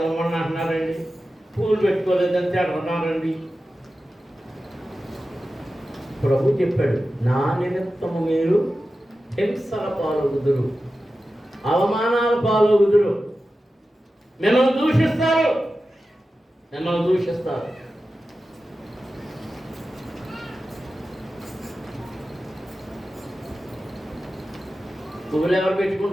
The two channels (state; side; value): normal; both; correlation 0.93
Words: అంటున్నారండి, పూలు పెట్టుకోలేదని తిడుతున్నారండి. ప్రభు చెప్పాడు, నా నిమిత్తము మీరు హింసల పాలవుదురు, అవమానాల పాలవుదురు, మిమ్మల్ని దూషిస్తారు, మిమ్మల్ని దూషిస్తారు. పువ్వులు ఎవరు